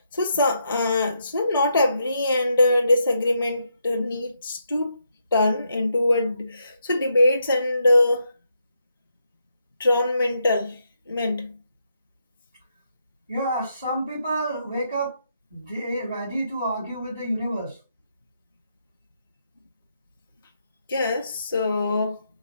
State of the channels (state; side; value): inverted; both; correlation -0.80